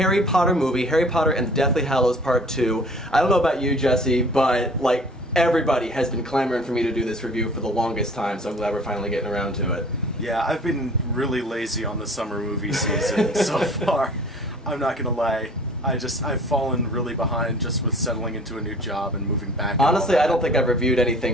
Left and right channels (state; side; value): normal; both; correlation 0.48